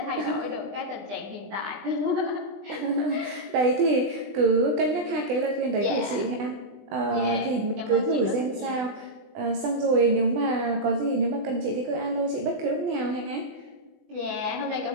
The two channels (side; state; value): left; late; 20 ms